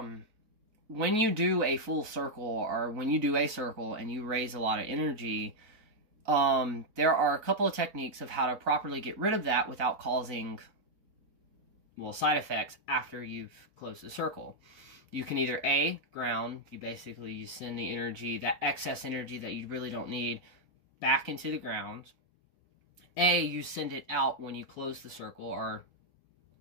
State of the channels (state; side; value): late; left; 4.4 ms